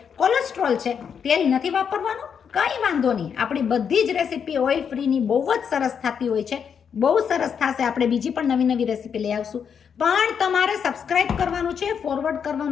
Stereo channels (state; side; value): quieter; right; 7.2 dB